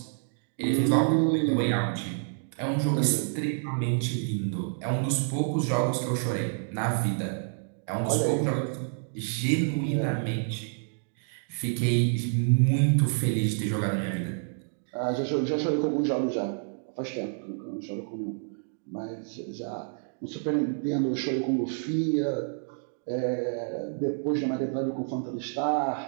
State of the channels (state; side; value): silent; left; 59 dB below the other